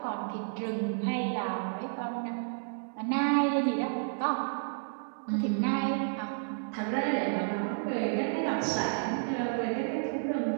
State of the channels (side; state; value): left; silent; 57 dB below the other